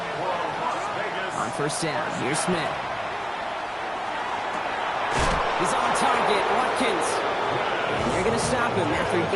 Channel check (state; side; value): identical; both; correlation 1.00